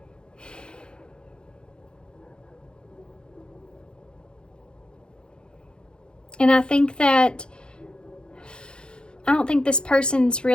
And I think that, I don't think this person's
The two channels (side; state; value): right; late; 0.050 ms